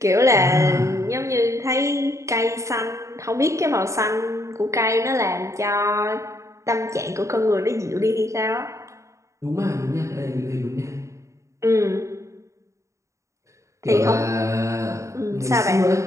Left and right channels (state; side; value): late; left; 0.15 ms